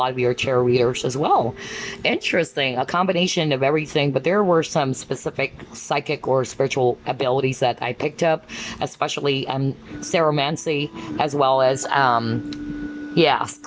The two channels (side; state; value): both; identical; correlation 1.00